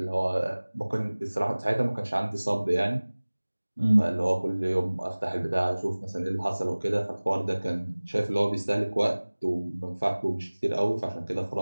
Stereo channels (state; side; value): inverted; both; correlation -1.00